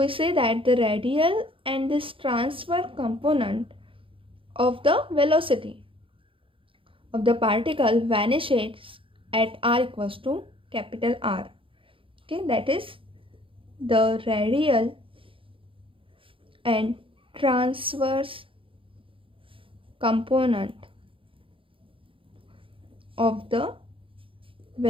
say that the radial and this transverse component of the velocity of the particle vanishes at r equals to capital R. Okay, that is the radial and transverse component of the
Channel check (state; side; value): late; left; 0.26 ms